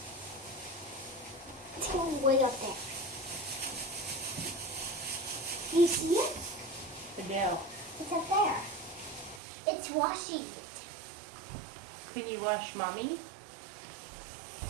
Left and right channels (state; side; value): drops out; left; at 9.4 s